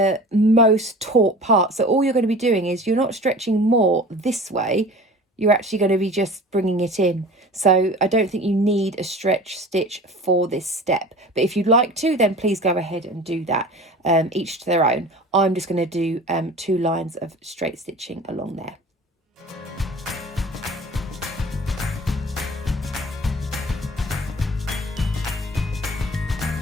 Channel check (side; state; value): both; normal; correlation 0.40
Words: most taut part. So all you're going to be doing is you're not stretching more this way, you're actually going to be just bringing it in. So I don't think you need a stretch stitch for this step, but if you'd like to, then please go ahead and do that, each to their own. I'm just going to do 2 lines of straight stitching along there.